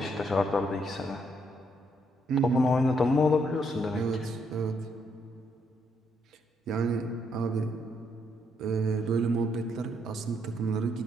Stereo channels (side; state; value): both; normal; correlation 0.74